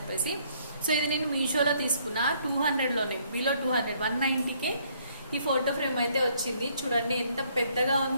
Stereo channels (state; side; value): inverted; both; correlation -0.66